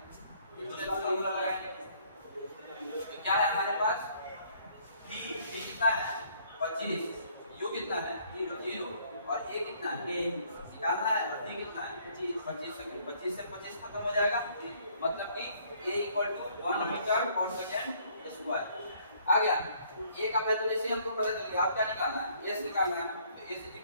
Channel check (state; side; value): inverted; both; correlation -0.62